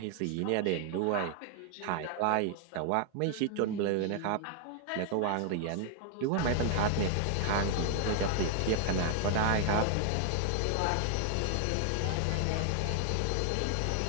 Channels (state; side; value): different; both; correlation 0.00